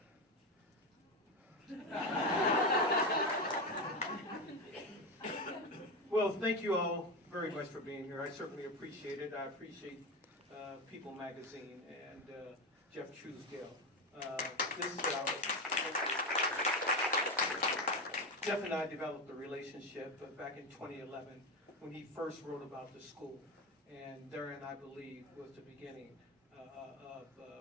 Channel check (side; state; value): both; normal; correlation 0.16